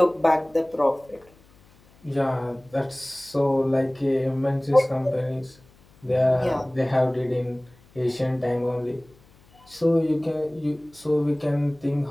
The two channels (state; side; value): noise; left; hum, 29 dB below the sound